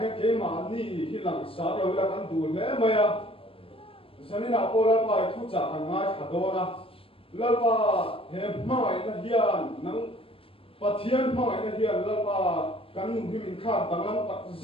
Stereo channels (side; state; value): right; late; 0.27 ms